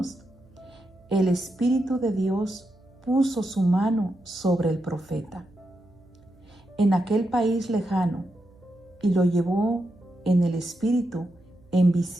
el Espíritu de Dios puso su mano sobre el profeta en aquel país lejano y lo llevó en el Espíritu en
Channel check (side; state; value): right; noise; hum, 28 dB below the sound